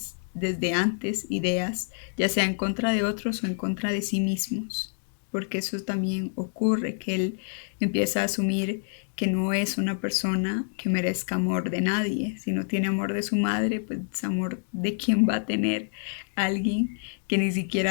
desde antes ideas, ya sea en contra de otros o en contra de sí mismos, porque eso también ocurre, que él empieza a asumir que no es una persona que merezca amor de nadie. Si no tiene amor de su madre, pues amor de quién va a tener alguien que ni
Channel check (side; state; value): right; silent; digital silence